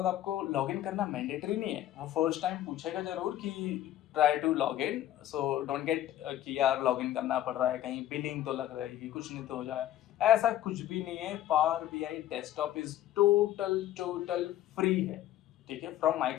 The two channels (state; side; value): quieter; right; 12.8 dB